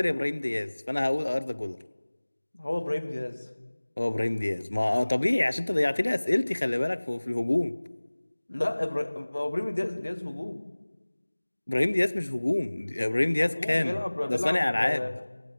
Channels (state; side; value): inverted; both; correlation -1.00